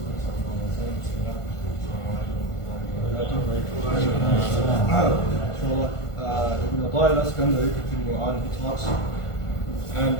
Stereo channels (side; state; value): right; late; 1.5 ms